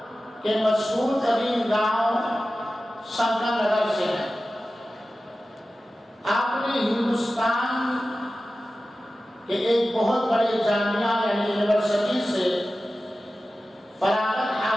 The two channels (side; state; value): both; normal; correlation 0.95